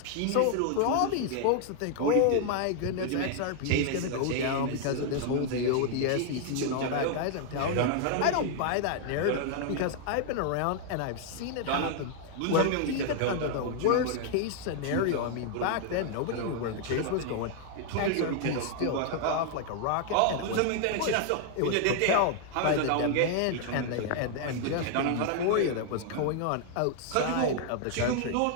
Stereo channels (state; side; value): different; both; correlation 0.00